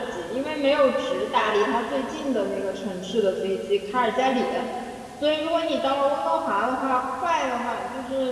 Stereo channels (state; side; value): identical; both; correlation 1.00